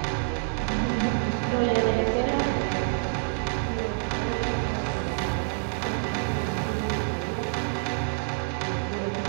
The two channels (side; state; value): left; silent; digital silence